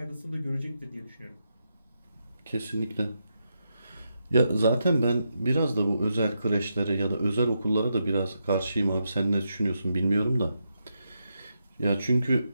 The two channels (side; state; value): both; inverted; correlation -0.84